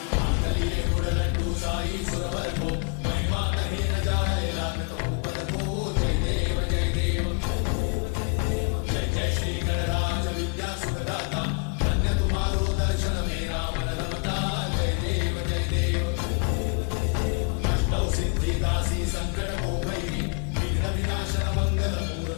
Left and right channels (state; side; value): quieter; right; 36.9 dB